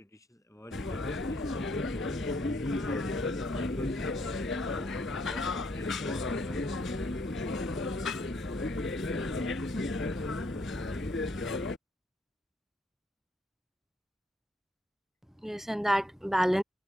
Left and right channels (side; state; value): both; normal; correlation 0.71